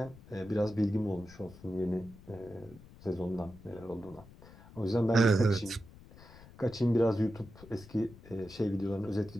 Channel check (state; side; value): noise; left; rumble, 20 dB below the sound